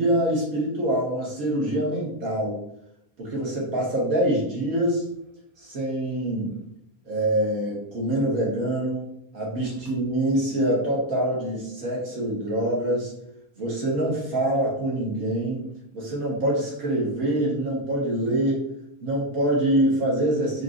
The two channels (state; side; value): late; left; 4.3 ms